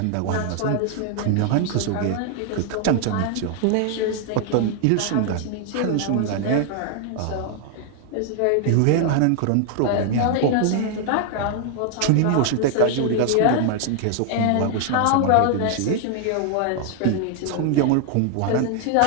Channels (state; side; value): different; both; correlation 0.00